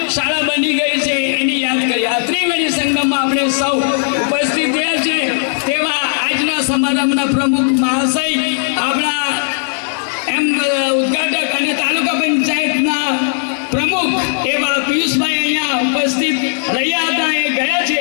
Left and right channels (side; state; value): right; silent; digital silence